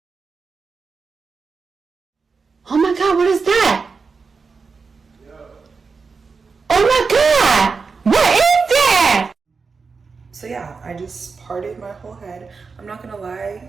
Oh my god, what is that? Yo. Oh my god! What is that? So yeah, I just parted my whole head. I'm not gonna lie,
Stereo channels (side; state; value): left; quieter; 4.8 dB